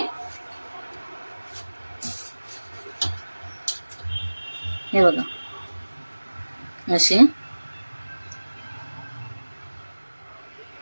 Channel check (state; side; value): inverted; both; correlation -1.00